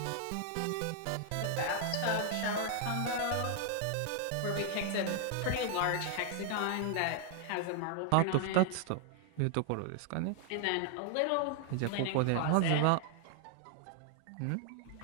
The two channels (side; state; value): both; different; correlation 0.00